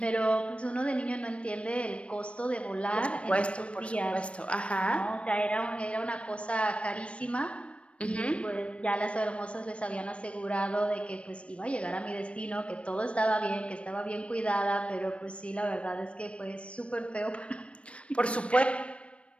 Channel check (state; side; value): late; right; 0.061 ms